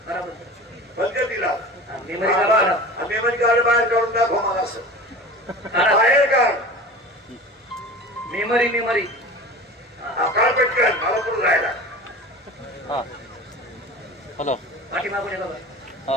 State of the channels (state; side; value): normal; both; correlation 0.36